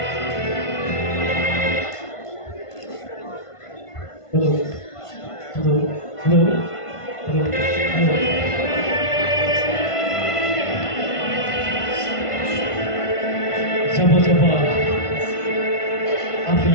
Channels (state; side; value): late; right; 1.5 ms